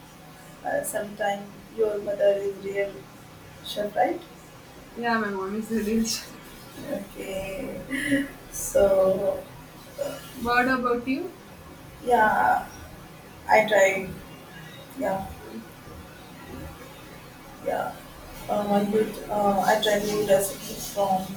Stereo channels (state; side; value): identical; both; correlation 1.00